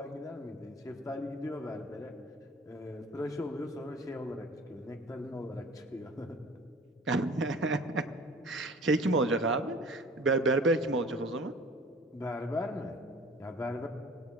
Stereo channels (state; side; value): normal; both; correlation 0.46